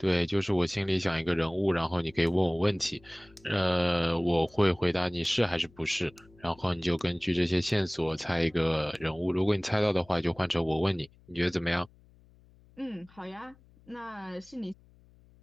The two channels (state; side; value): noise; left; hum, 28 dB below the sound